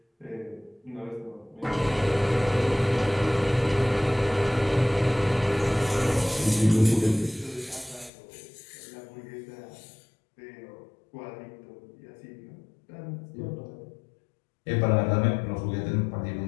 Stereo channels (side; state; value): right; drops out; at 8.1 s